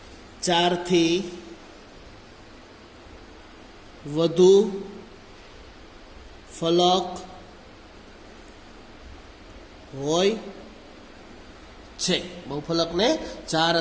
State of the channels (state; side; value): identical; both; correlation 1.00